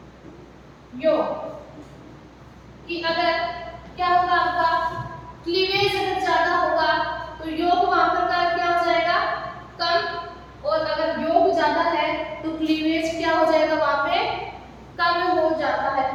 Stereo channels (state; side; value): identical; both; correlation 1.00